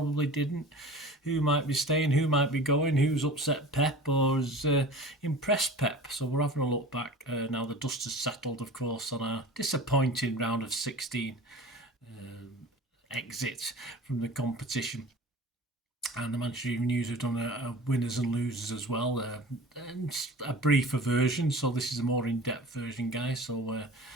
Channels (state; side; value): normal; both; correlation 0.39